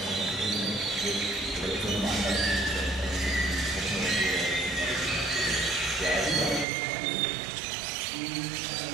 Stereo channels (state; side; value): drops out; left; at 6.7 s